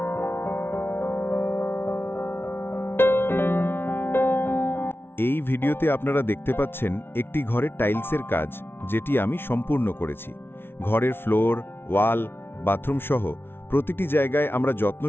এই ভিডিওতে আপনারা দেখতে পাচ্ছেন একটি ঘরের টাইলসের কাজ, যেটি আমি সম্পূর্ণ করেছি। ঘরের ফ্লোর, ওয়াল, বাথরুম সহ প্রতিটি জায়গায় আমরা যত্ন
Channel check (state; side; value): late; right; 0.11 ms